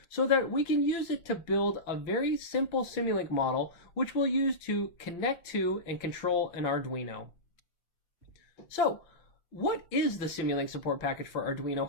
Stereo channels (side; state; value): right; late; 5.8 ms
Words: so that we can use it to build a very simple Simulink model which we'll use to connect to and control an Arduino. So, what is the Simulink support package for Arduino